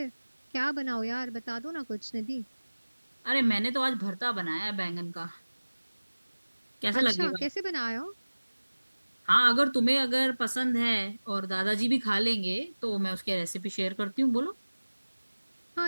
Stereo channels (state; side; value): inverted; both; correlation -1.00